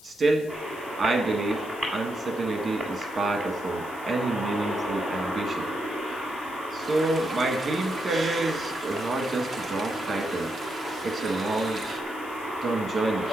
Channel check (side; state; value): left; noise; hiss, 21 dB below the sound